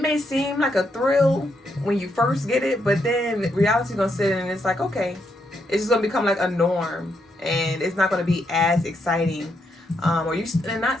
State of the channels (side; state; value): both; normal; correlation 0.79